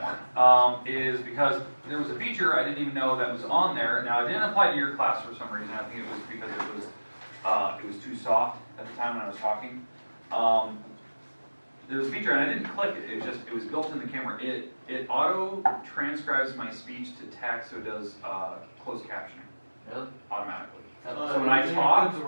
one is because there was a feature I didn't even know that was on there. Now, it didn't apply to your class for some reason. I think it was because it was too soft at the time when I was talking. There was a feature and I didn't click it. It was built in the camera. It auto transcribes my speech to text, so it does closed captioning. Really? Automatically. So when I talk,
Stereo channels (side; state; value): both; inverted; correlation -1.00